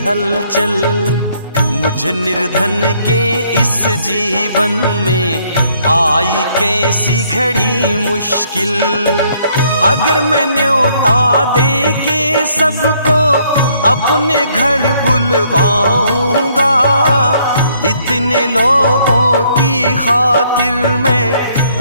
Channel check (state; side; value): inverted; both; correlation -0.67